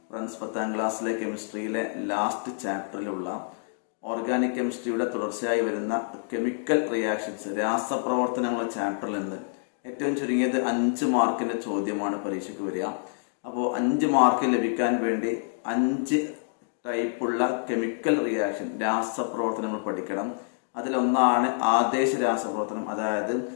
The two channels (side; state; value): right; silent; digital silence